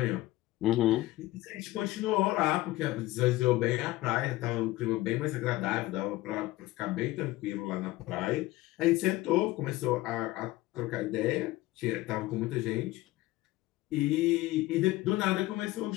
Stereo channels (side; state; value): right; quieter; 17.8 dB